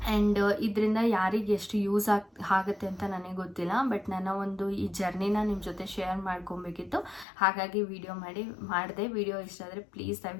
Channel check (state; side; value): drops out; right; at 7.2 s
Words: ಆ್ಯಂಡ್ ಇದರಿಂದ ಯಾರಿಗೆ ಎಷ್ಟು ಯೂಸ್ ಆಗುತ್ತೆ ಅಂತ ನನಗೆ ಗೊತ್ತಿಲ್ಲ. ಬಟ್ ನನ್ನ ಒಂದು ಈ ಜರ್ನಿನ ನಿಮ್ಮ ಜೊತೆ ಶೇರ್ ಮಾಡ್ಕೊಬೇಕಿತ್ತು, ಹಾಗಾಗಿ ಮಾಡಿದೆ. ವಿಡಿಯೋ ಇಷ್ಟ ಆದರೆ ಪ್ಲೀಸ್